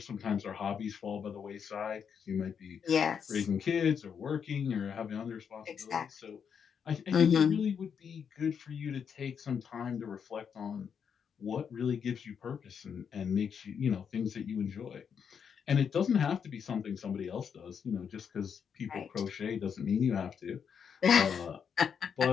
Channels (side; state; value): right; quieter; 7.1 dB